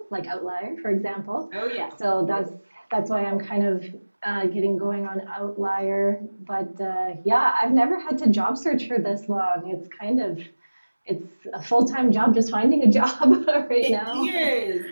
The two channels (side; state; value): both; inverted; correlation -1.00